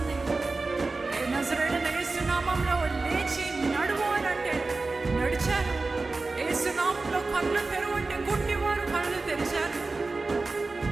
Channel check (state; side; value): quieter; left; 3.6 dB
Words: నజరేయుడైన యేసు నామంలో లేచి నడువు అని అంటే నడిచాను. యేసు నామంలో కళ్ళు తెరువు అంటే గుడ్డివారు కళ్ళు తెరిచారు.